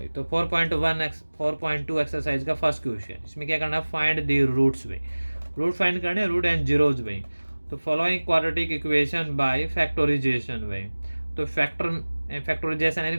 तो 4.2 एक्सरसाइज का फर्स्ट क्वेश्चन, इसमें क्या करना है, फाइंड द रूट्स भाई। रूट फाइंड करने, रूट एंड जीरोज भाई। तो following quadratic equation by factorisation भाई। तो फैक्टोराइजेशन यानी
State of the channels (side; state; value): both; inverted; correlation -1.00